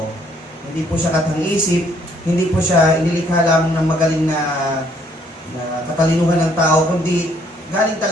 Hindi po siya katang-isip, hindi po siya inilikha lamang ng magaling na katalinuhan ng tao, kundi galing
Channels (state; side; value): normal; both; correlation 0.66